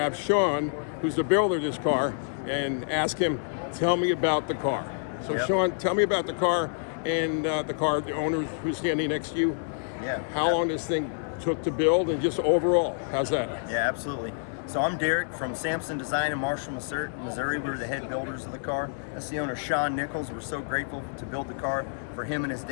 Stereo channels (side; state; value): right; silent; digital silence